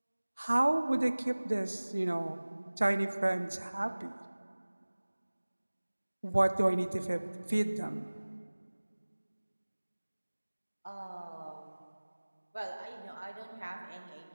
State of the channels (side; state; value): both; inverted; correlation -1.00